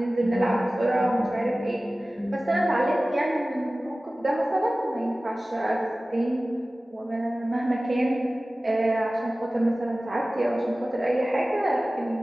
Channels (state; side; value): normal; both; correlation 0.97